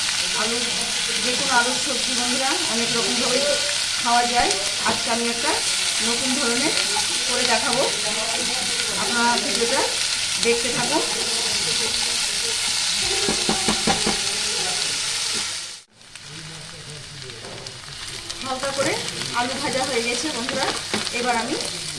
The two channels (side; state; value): both; identical; correlation 1.00